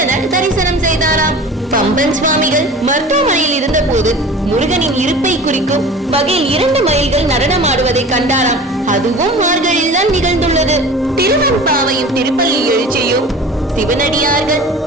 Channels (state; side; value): normal; both; correlation 0.39